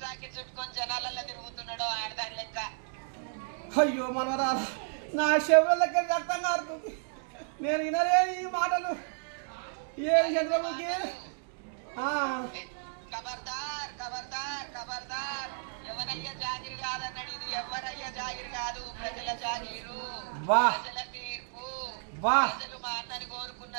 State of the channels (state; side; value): silent; left; digital silence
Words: చుట్టుకొని జనాలలో తిరుగుతున్నాడు ఆడదాని లెక్క. అయ్యో మనవరాలు నా శివులకి రక్తం కారుతుంది, నేను వినలేని ఈ మాటలు. ఏ చంద్రముఖి ఖబర్దార్ ఖబర్దార్ ఖబర్దార్, ఎవరయ్యా జాగిరి కాదన్నాడు. ఇది ఎవరయ్యా జాగిరి కాదు, ప్రజల జాగిరు, ప్రజల తీర్పు. ప్రజలు మా అన్నని